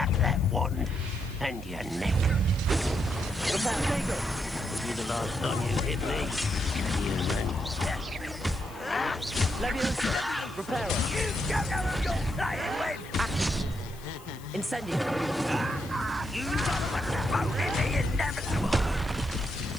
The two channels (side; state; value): left; noise; hiss, 21 dB below the sound